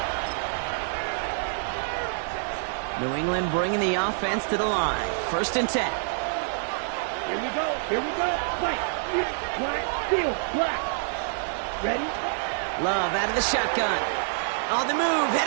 New England bringing the offense to the line. First and 10. Here we go. Black, field, black. Ready? Love out of the shotgun. On the move,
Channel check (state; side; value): silent; left; 60 dB below the other